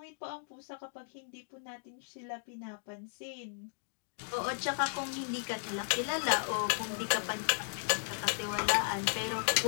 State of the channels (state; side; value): silent; right; digital silence